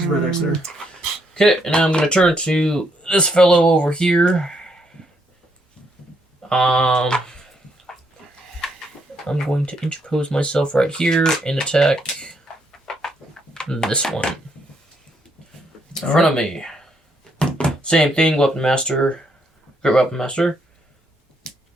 the red X there. Okay, and now I'm gonna turn to this fellow over here. I'm going to interpose myself right here and attack this one in front of me. Same thing, weapon master, great weapon master.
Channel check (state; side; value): normal; both; correlation 0.74